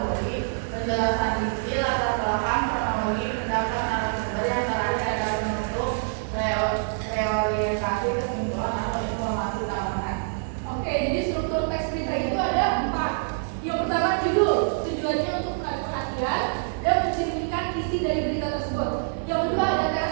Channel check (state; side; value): silent; left; digital silence